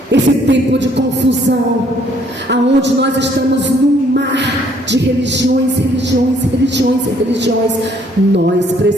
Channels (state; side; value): normal; both; correlation 0.64